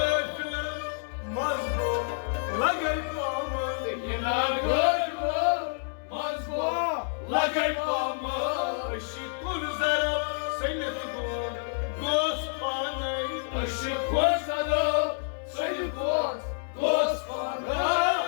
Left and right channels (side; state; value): right; silent; digital silence